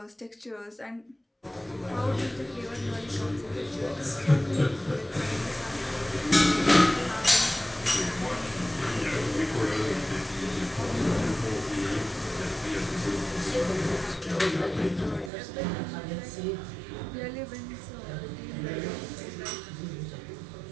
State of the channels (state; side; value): drops out; left; at 15.3 s